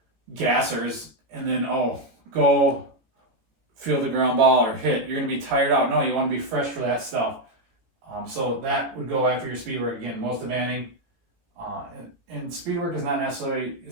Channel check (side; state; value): left; late; 18 ms